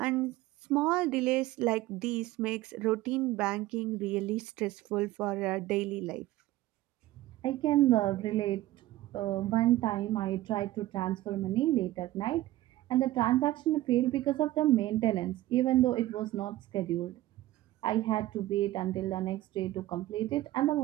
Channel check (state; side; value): quieter; left; 16.0 dB